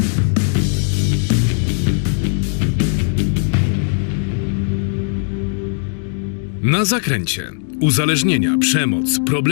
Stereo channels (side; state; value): right; silent; digital silence